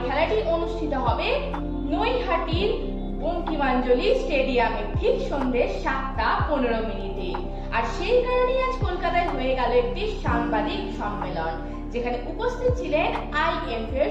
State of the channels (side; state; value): both; identical; correlation 1.00